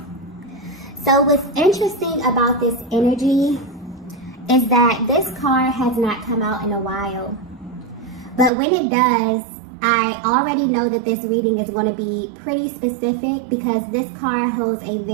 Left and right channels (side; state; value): left; drops out; at 8.5 s